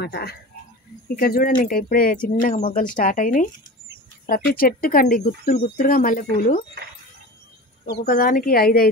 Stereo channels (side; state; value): both; normal; correlation 0.32